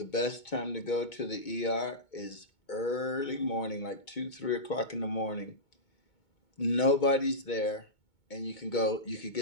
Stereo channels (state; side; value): late; right; 2.2 ms